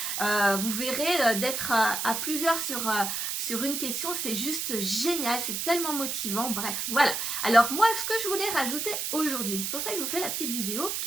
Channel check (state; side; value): noise; right; hiss, 2 dB below the sound